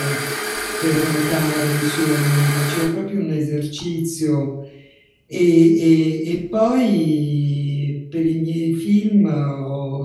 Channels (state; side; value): identical; both; correlation 1.00